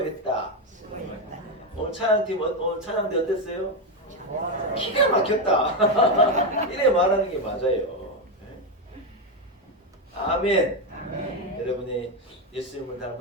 수고했다. 오늘 찬양팀 오늘 찬양대 어땠어요? 기가 막혔다. 이래 말하는 게 맞아요. 아멘. 아멘. 여러분이 예수님을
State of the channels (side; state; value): both; normal; correlation 0.08